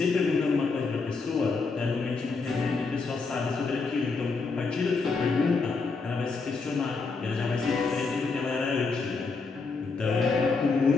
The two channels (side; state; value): right; quieter; 4.3 dB